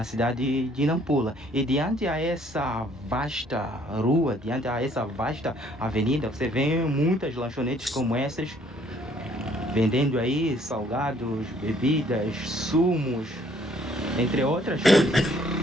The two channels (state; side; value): normal; both; correlation 0.62